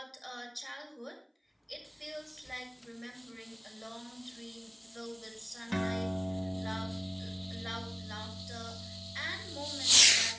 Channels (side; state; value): both; identical; correlation 1.00